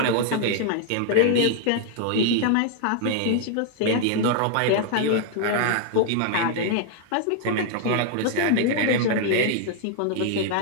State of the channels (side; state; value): both; different; correlation 0.00